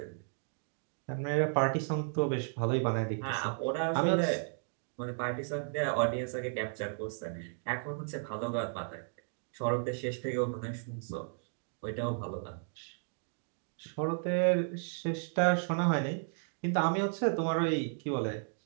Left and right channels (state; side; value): silent; left; digital silence